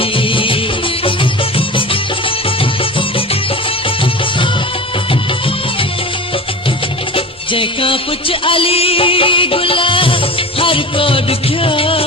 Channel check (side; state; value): both; normal; correlation 0.32